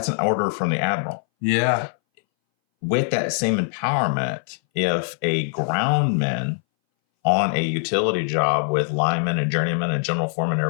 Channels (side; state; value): right; silent; 62 dB below the other